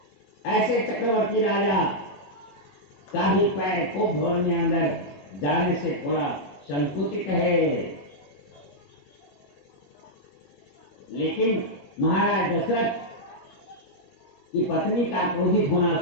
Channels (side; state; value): right; late; 21 ms